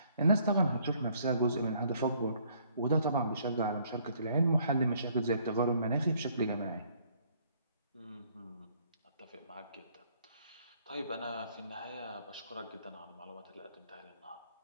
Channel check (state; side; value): inverted; both; correlation -0.64